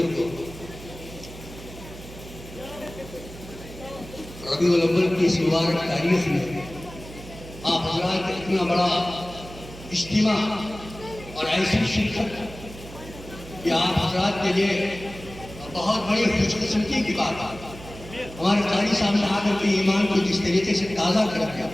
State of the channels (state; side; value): noise; right; hum, 15 dB below the sound